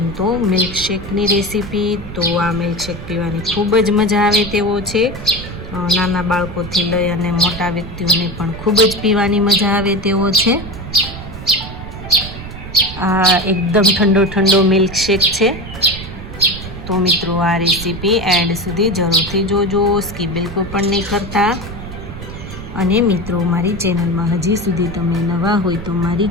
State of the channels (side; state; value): right; noise; rumble, 11 dB below the sound